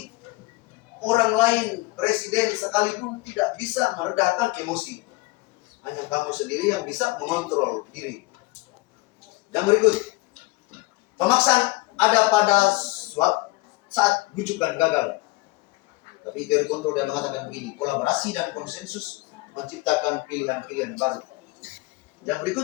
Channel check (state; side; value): quieter; right; 22.5 dB